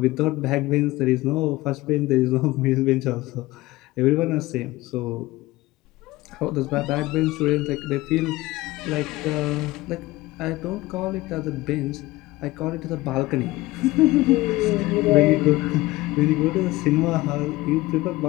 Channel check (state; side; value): quieter; right; 19.1 dB